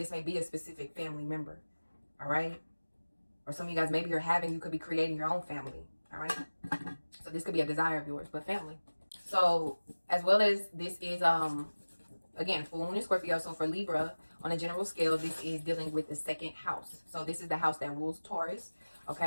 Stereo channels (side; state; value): both; inverted; correlation -1.00